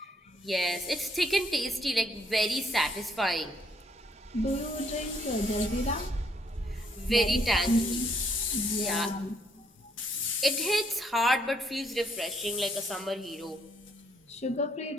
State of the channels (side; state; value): both; normal; correlation 0.69